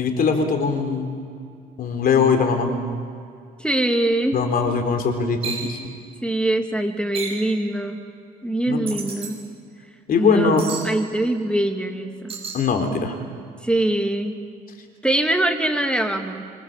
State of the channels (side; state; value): both; normal; correlation 0.58